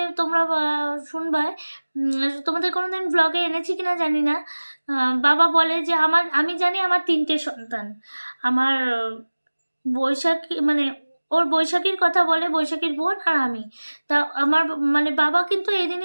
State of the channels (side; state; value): both; inverted; correlation -1.00